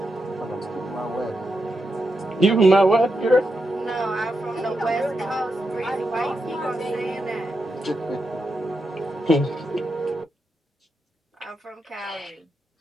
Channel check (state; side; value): normal; both; correlation 0.85